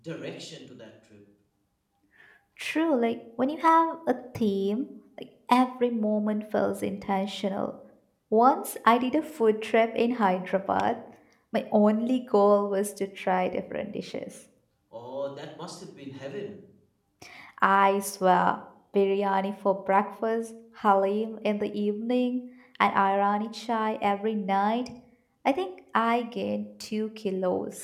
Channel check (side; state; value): both; identical; correlation 1.00